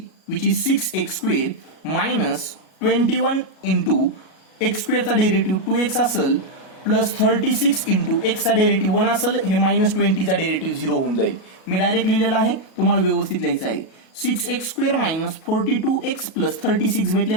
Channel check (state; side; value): late; right; 37 ms